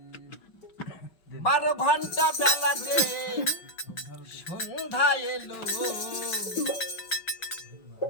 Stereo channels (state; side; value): late; right; 5.5 ms